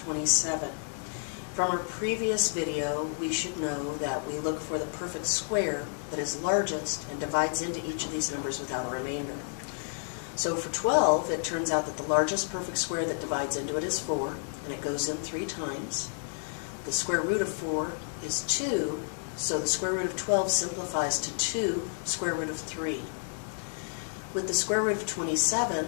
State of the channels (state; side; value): silent; right; 57 dB below the other